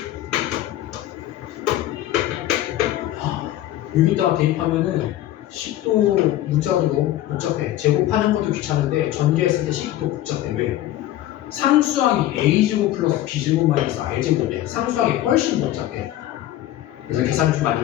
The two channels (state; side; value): quieter; right; 13.8 dB